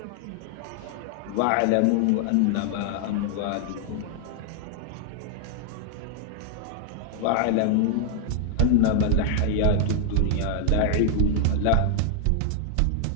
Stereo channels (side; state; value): both; different; correlation 0.00